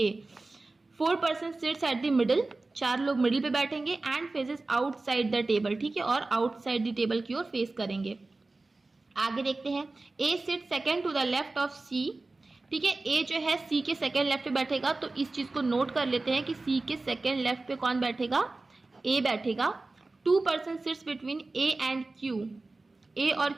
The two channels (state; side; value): quieter; left; 3.3 dB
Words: 4 person seats at the middle, 4 लोग मिडिल पे बैठेंगे। And phases outside the table, ठीक है, और आउटसाइड द टेबल की ओर फेस करेंगे। आगे देखते हैं। A sit second to the left of C, ठीक है, ए जो है सी के सेकेंड लेफ्ट पे बैठेगा। तो इस चीज को नोट कर लेते हैं कि सी के सेकेंड लेफ्ट पे कौन बैठेगा, ए बैठेगा। 2 person sits between A and Q, A और